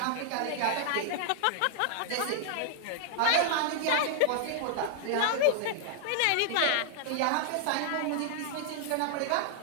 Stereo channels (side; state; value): both; different; correlation 0.00